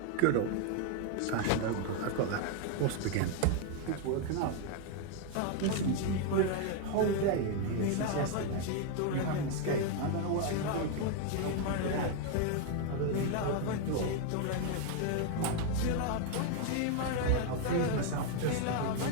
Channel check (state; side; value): different; both; correlation 0.01